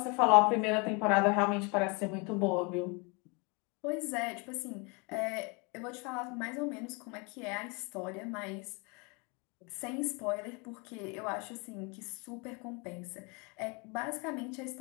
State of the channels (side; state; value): right; quieter; 30.8 dB